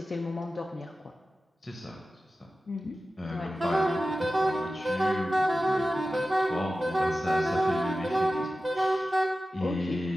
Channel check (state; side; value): normal; both; correlation 0.94